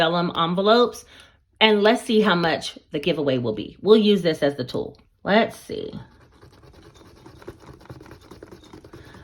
envelopes. And let's see how much the giveaway will be. We'll use this as the tool. Let's see.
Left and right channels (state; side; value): identical; both; correlation 1.00